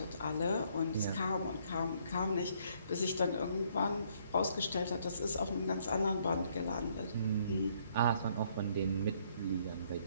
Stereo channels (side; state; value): both; inverted; correlation -0.67